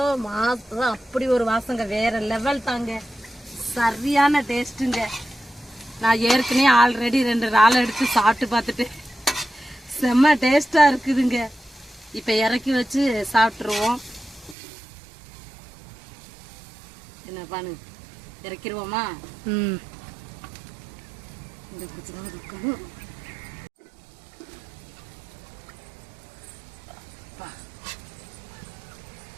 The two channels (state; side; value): drops out; left; at 14.6 s